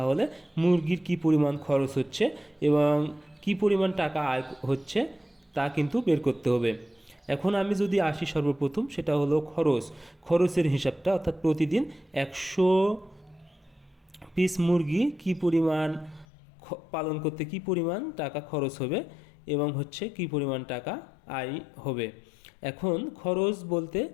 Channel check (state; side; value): drops out; right; at 16.2 s